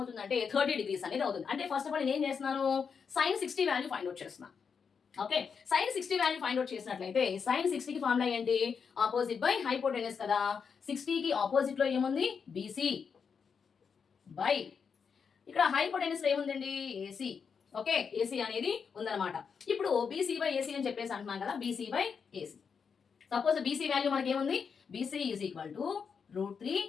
30 degrees అనేది అవుతుంది. అంటే ఫస్ట్ ఆఫ్ ఆల్ నేను ఏం చేస్తున్నాను, సైన్ 60 వాల్యూ ఫైండ్ అవుట్ చేస్తున్నాను. Okay, sine 60 value find out చేసినట్లయితే సైన్ 60 కి ఫార్ములా ఏంటి, ఆపోజిట్ బై హైపోటెన్యూస్ కదా. 60 కి ఆపోజిట్ లో ఏముంది, బీసీ బై ఇక్కడ హైపోటెన్యూస్ లో ఏముందండి, ఏసీ. ఓకే, ఏసీ అనేది ఉందన్నమాట. ఇప్పుడు బీసీ బై ఏసీ అని చెప్పేసి అంటున్నాం కదా, BC by AC. Suppose BC value మనకి ఏముంది, BC is equal to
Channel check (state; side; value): quieter; right; 6.2 dB